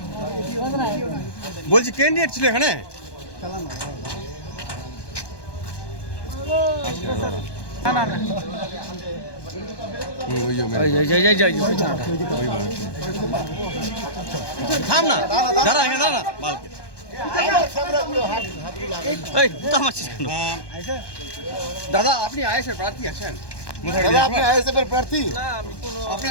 বলছি ক্যান্ডিডেট ছিল এখানে থাম না দাঁড়া এখানে দাঁড়া বালকে এই তো আমার দাদা আপনি আইএসএফ প্রার্থী আছেন দাদা আপনি আইএসএফ এর প্রার্থী না আমি কোনো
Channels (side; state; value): right; late; 1.2 ms